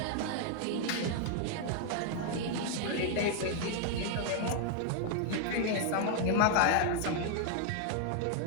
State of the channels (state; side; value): different; both; correlation 0.00